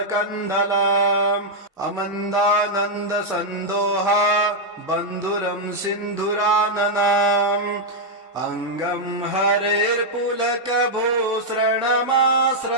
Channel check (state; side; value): normal; both; correlation -0.02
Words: अमन्दानन्दसन्दोहा बन्धुरं सिन्धुराननाम् अङ्गं